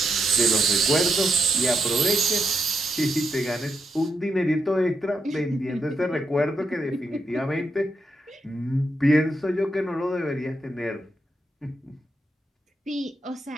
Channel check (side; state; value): both; normal; correlation 0.81